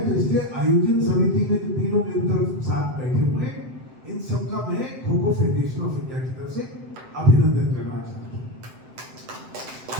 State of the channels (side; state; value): left; late; 7.8 ms